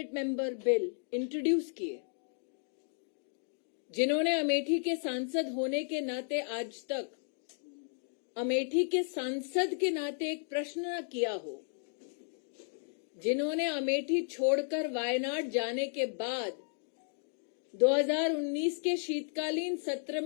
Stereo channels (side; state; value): right; silent; 55 dB below the other